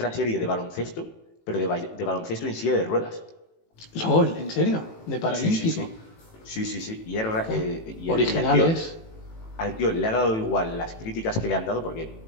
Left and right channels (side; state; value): right; late; 18 ms